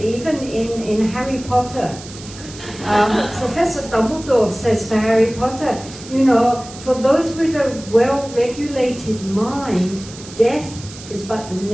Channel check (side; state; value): right; noise; hiss, 16 dB below the sound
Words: in Harry Potter, Professor Dumbledore says to Harry Potter, you know, for those with a well-regulated mind, death is but the